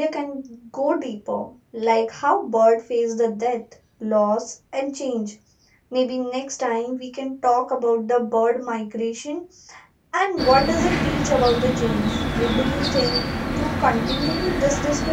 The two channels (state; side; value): identical; both; correlation 1.00